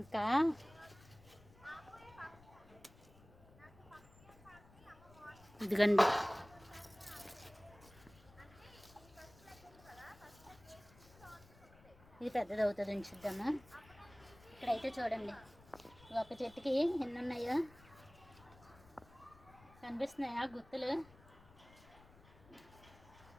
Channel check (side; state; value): left; noise; rumble, 23 dB below the sound